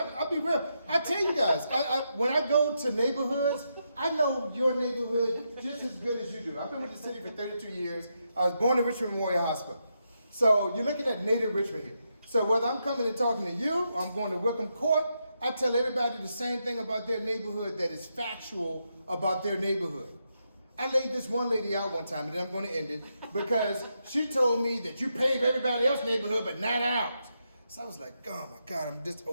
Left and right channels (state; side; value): inverted; both; correlation -0.83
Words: be real. I tell you guys, when I go to neighborhoods, I know your neighborhood just as good as you do. I've been with the city for 32 years. I was born in Richmond Memorial Hospital. So you're looking at native Richmond here. So whether I'm coming and talking to you, or I'm going to Wickham Court, I tell everybody the same thing about their neighborhood that is factual about their neighborhood. I laid this one lady out one time, and then I'm going to end it, because she told me that you pave everybody else's neighborhood, but not ours. So I was like, oh my God, I'm this